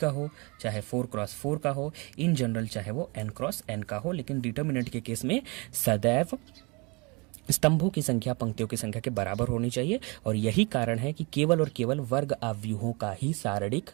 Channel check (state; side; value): quieter; left; 28.7 dB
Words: हो, चाहे 4x4 का हो, इन जनरल चाहे वो n×n का हो। लेकिन डिटर्मिनेंट के केस में सदैव स्तंभों की संख्या पंक्तियों की संख्या के बराबर होनी चाहिए, और यही कारण है कि केवल और केवल वर्ग अव्यूहों का ही सारणिक